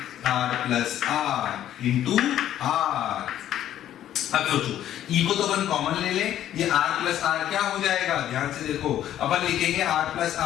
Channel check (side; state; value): right; quieter; 11.7 dB